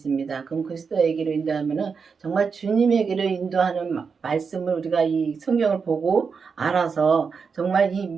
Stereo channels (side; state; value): left; quieter; 5.6 dB